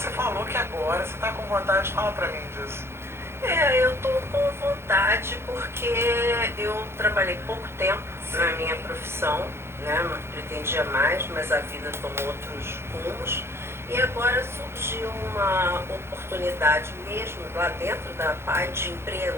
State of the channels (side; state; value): left; late; 0.12 ms